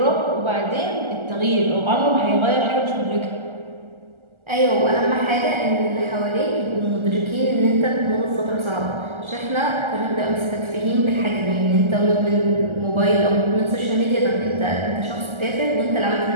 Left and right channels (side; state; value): left; late; 1.4 ms